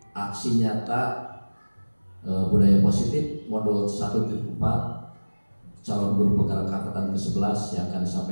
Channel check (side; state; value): both; inverted; correlation -1.00